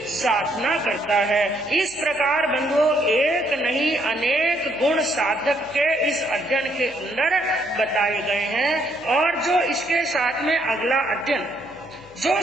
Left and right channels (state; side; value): noise; left; hum, 28 dB below the sound